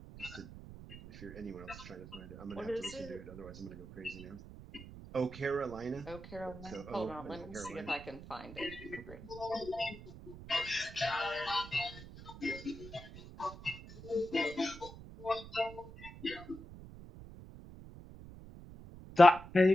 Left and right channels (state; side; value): noise; right; rumble, 14 dB below the sound